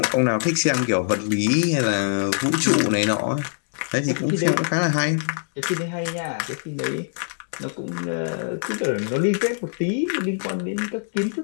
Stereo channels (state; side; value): silent; right; digital silence